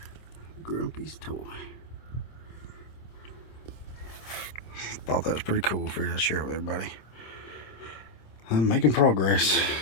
Grumpy's toy. Thought that was pretty cool. Figured I'd share it with everybody. I'm making progress.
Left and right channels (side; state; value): right; late; 26 ms